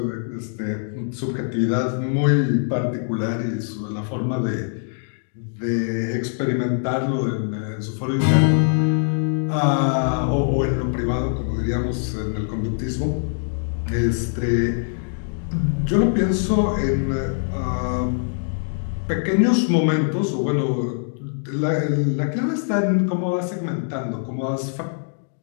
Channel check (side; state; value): right; silent; digital silence